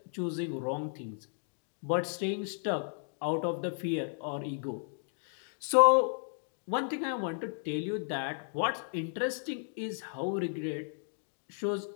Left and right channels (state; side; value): silent; right; digital silence